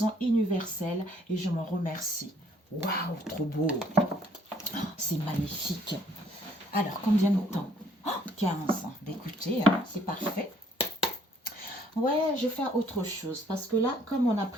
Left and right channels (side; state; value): both; normal; correlation 0.62